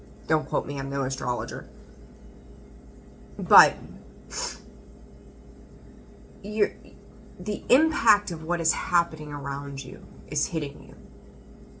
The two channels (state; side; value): identical; both; correlation 1.00